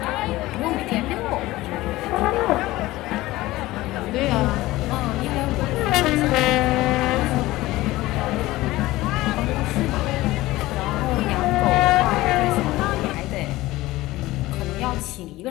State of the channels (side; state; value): right; quieter; 18.0 dB